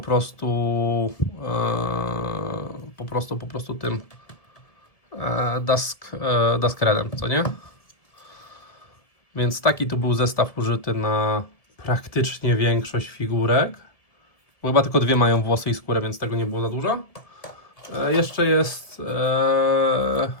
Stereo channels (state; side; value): late; right; 1.7 ms